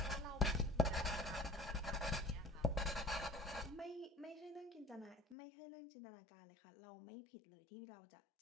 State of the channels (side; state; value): right; drops out; at 5.4 s